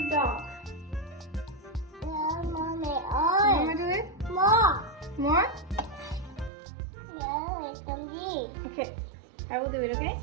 the dog. No, mommy. You Oh. want to do it? More. More? No, it's for me. Okay, I will do it, okay?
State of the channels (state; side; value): drops out; left; at 6.5 s